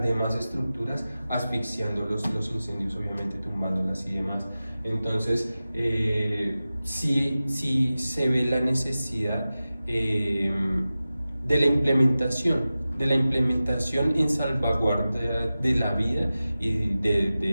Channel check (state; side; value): inverted; both; correlation -0.95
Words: demás estructuras, asfixiando los incendios, obviamente tumbándolas y demás. Entonces sí se ve la necesidad de la implementación en salvaguarda de la vida y